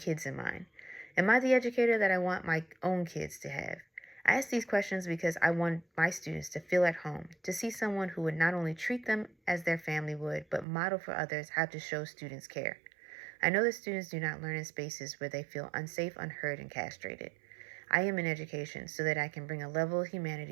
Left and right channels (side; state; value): left; drops out; at 10.7 s